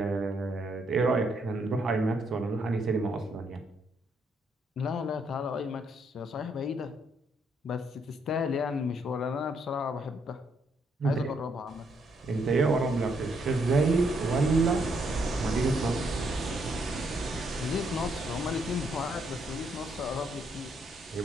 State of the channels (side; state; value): both; normal; correlation 0.74